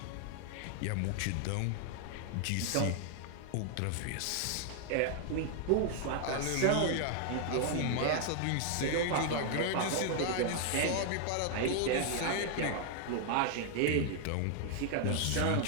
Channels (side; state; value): both; different; correlation 0.00